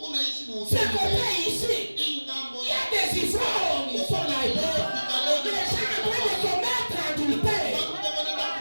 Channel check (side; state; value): both; inverted; correlation -1.00